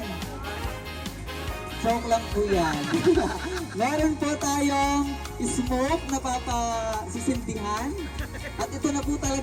Joke lang po yan. Meron po tayong smoke na papasisindihan. At ito na po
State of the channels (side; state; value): both; identical; correlation 1.00